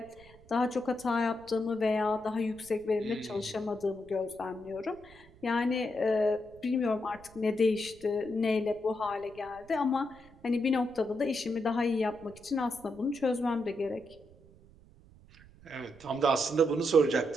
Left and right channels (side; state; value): right; noise; rumble, 24 dB below the sound